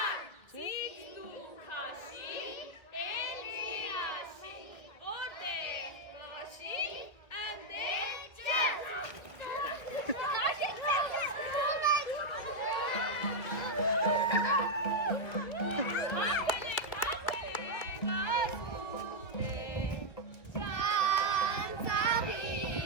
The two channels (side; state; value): right; late; 2.0 ms